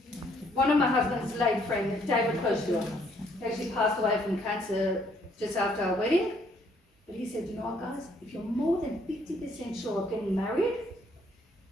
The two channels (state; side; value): normal; both; correlation 0.66